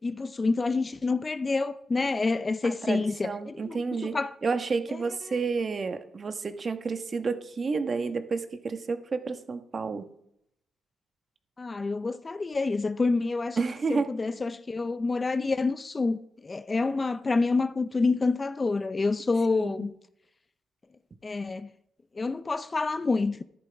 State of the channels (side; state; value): both; normal; correlation 0.92